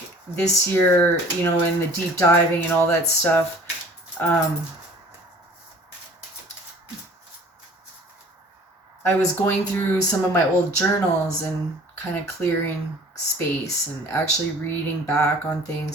this year, in the deep diving and all that stuff, I was going through some of my old journals and kind of clearing space and actually reading back on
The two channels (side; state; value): both; normal; correlation 0.49